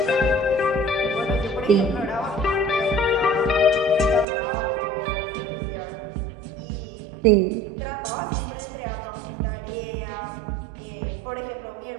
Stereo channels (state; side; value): drops out; left; at 4.2 s